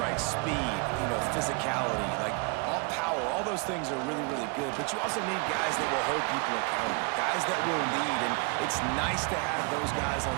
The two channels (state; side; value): quieter; left; 31.9 dB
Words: Speed, physicality, like power. All those things are really, really good. But you also need guys that will hold people accountable, guys that will lead. And it's nice to have those guys on